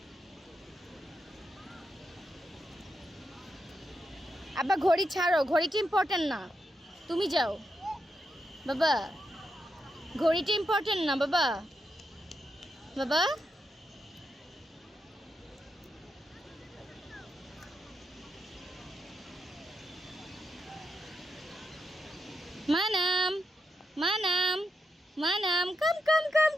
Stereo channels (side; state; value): both; normal; correlation 0.85